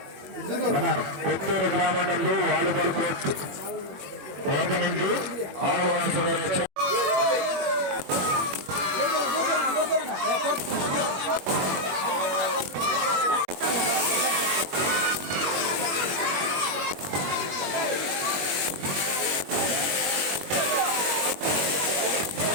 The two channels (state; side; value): late; left; 21 ms